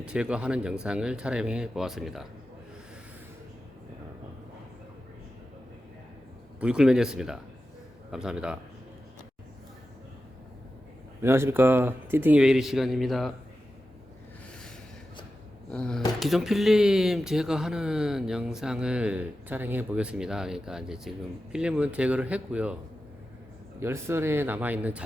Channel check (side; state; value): both; normal; correlation 0.92